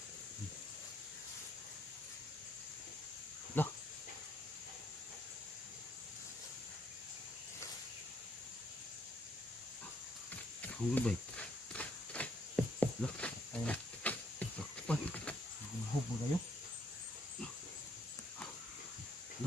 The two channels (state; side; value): normal; both; correlation 0.70